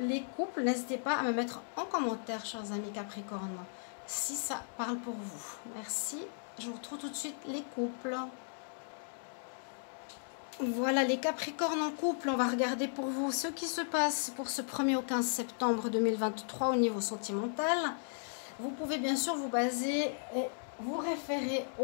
couples. N'hésitez pas à me mettre en commentaire, chers amis Capricorne, si ça parle pour vous. Merci. Je vous retrouve tout de suite les couples. Voilà, les Capricornes en couple. On va regarder pour vous ce qui se passe pour ce 1er au 15 septembre 2023 au niveau sentimental. Vous pouvez bien sûr vous baser et vous référer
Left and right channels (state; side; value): silent; right; digital silence